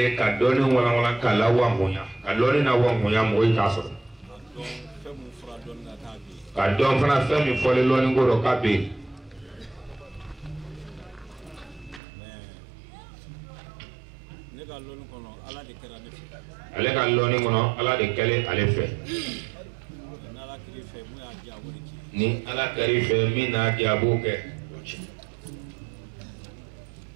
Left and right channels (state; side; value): drops out; left; at 12.0 s